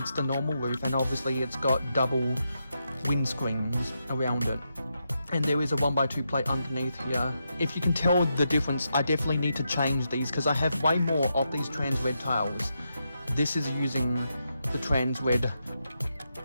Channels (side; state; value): both; inverted; correlation -0.84